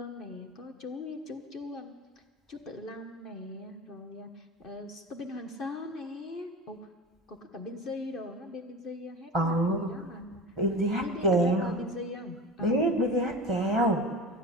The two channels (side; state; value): both; normal; correlation 0.31